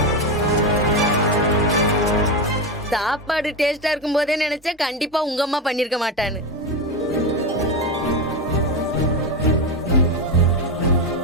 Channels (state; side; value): normal; both; correlation 0.14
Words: சாப்பாடு டேஸ்டா இருக்கும் போதே நினைச்சேன் கண்டிப்பா உங்க அம்மா பண்ணிருக்க மாட்டான்னு.